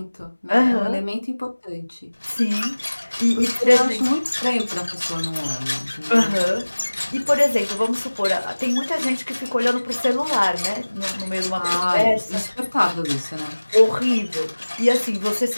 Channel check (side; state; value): both; inverted; correlation -1.00